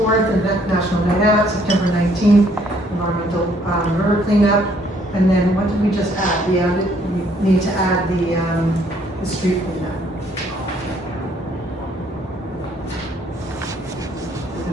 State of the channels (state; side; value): normal; both; correlation 0.65